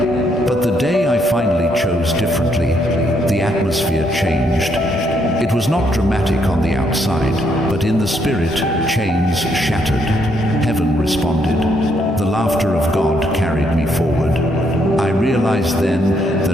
But the day I finally chose differently, the atmosphere changed. It was not dramatic on the outside, but in the spirit, chains shattered. Heaven responded. The laughter of God carried me forward. I realized then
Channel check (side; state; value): both; normal; correlation 0.73